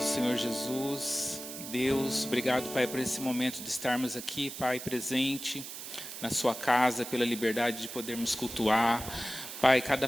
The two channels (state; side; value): noise; right; hiss, 10 dB below the sound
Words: Jesus, Deus, obrigado, Pai, por esse momento de estarmos aqui, Pai, presente na sua casa, pela liberdade de podermos cultuar. Pai, cada